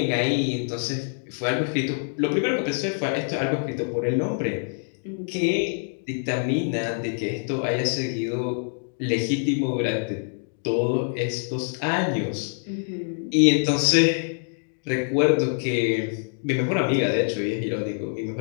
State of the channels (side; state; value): right; silent; digital silence